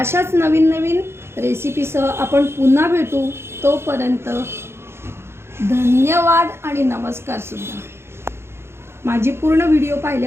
नवीन नवीन रेसिपीसह आपण पुन्हा भेटू. तोपर्यंत धन्यवाद आणि नमस्कार सुद्धा. माझी पूर्ण व्हिडिओ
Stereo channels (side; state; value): left; late; 0.12 ms